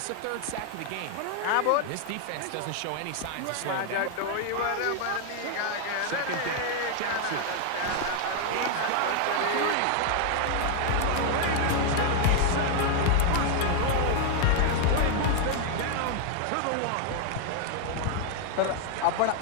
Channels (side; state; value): both; different; correlation 0.00